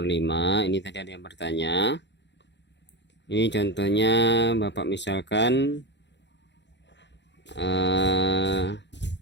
5, ini tadi ada yang bertanya. Ini contohnya Bapak misalkan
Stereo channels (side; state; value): right; late; 0.52 ms